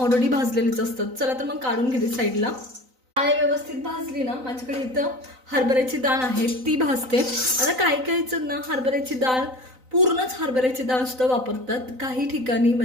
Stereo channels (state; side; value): late; left; 3.9 ms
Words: भाजलेलेच असतात. चला तर मग काढून घेते साईडला. डाळ व्यवस्थित भाजली ना, माझ्याकडे इथं हरभऱ्याची डाळ आहे ती भाजते. आता काही जण ना हरभऱ्याची डाळ पूर्णच हरभऱ्याची डाळ सुद्धा वापरतात. काही ठिकाणी